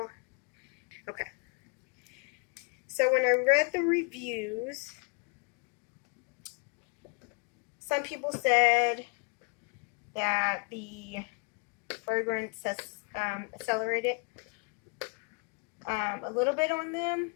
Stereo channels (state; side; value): quieter; right; 34.8 dB